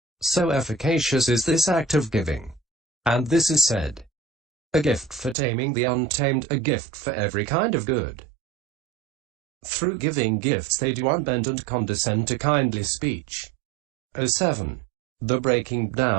So efficacious is this act of giving. And this is said, a gift for taming the untamed, a gift for every kind of good. Through giving gifts they do unbend and condescend to kindly speech. 07. The breaking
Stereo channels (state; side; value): drops out; left; at 5.4 s